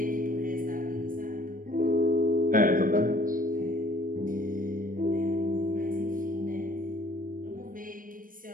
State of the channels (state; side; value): late; left; 0.40 ms